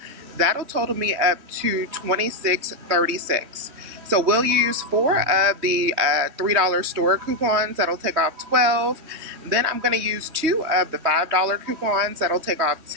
That'll total me up to $26.36. So we'll use 4 of the $3 store coupons. That'll take off 12. Then I'm going to use 2 of the $5 coupons. That'll take off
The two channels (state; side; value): late; left; 3.2 ms